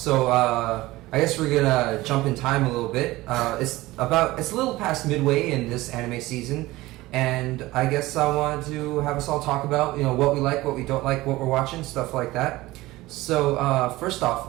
I guess we're gonna jump in time a little bit. It's a little past midway in this anime season, and I guess I wanted to have us all talk about, what we like, what we don't like, what we're watching, stuff like that. So, first off,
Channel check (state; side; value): quieter; left; 18.7 dB